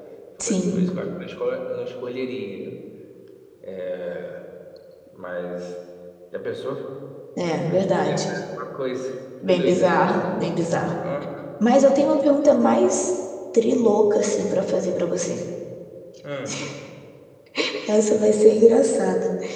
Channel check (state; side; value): identical; both; correlation 1.00